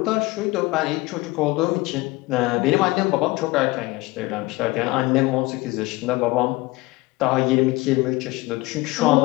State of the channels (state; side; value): quieter; right; 21.5 dB